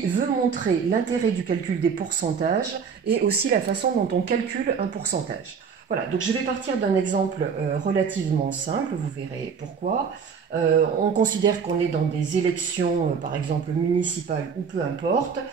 veut montrer l'intérêt du calcul des pourcentages et aussi la façon dont on calcule un pourcentage. Voilà, donc je vais partir d'un exemple relativement simple, vous verrez pourquoi. On considère qu'on est dans des élections, par exemple municipales ou peu importe,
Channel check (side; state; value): left; quieter; 6.3 dB